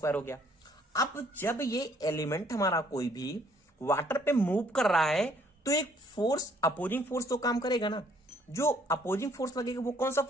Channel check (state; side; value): normal; both; correlation 0.63